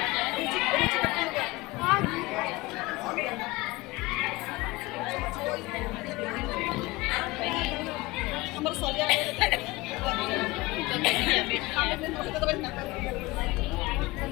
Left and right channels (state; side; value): quieter; right; 21.9 dB